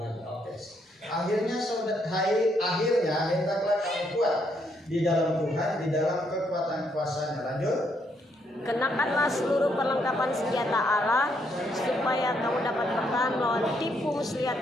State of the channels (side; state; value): both; normal; correlation 0.74